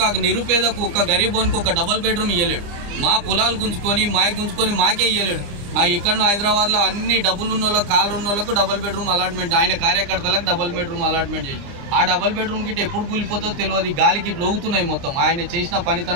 నిరుపేదకు, ఒక్క గరీబోనికి ఒక డబల్ బెడ్రూమ్ ఇవ్వలేడు. మా పొలాలు గుంజుకొని మాకే ఇవ్వలేడు. ఇక్కడ హైదరాబాద్లో అన్ని డబ్బులు ఉన్న వాళ్ళకి, కాళ్ళు ఉన్న వాళ్ళకు డబల్ బెడ్రూమ్ అలాట్మెంట్, ఆయన కార్యకర్తలకు డబల్ బెడ్రూమ్ అలాట్మెంట్ చేసి ఆ డబల్ బెడ్రూమ్ గిట్ట ఎప్పుడు కూలిపోతుందో తెలియదు. గాలికి లోగుతున్నాయి మొత్తం. ఆయన చేసిన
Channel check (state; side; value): late; left; 30 ms